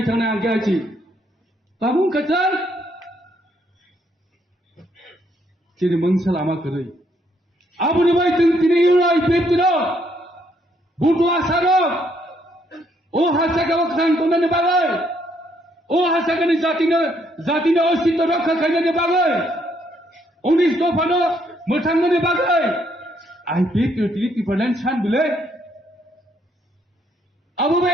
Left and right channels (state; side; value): normal; both; correlation 0.71